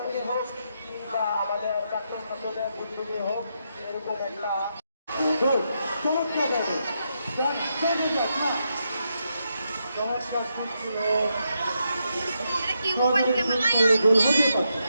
হোক কিংবা আমাদের প্রাক্তন ছাত্রদের উদ্যোগে হোক এরকম একটা চমৎকার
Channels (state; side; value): inverted; both; correlation -0.82